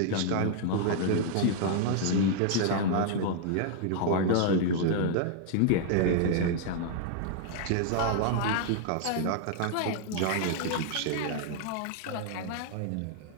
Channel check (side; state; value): both; different; correlation 0.00